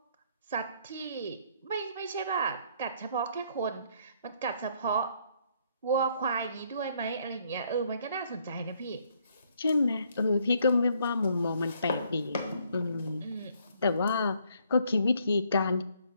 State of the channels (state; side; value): inverted; both; correlation -0.68